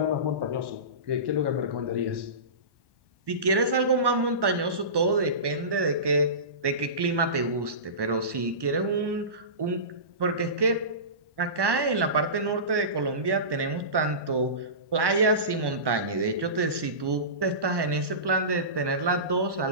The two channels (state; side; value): late; left; 1.1 ms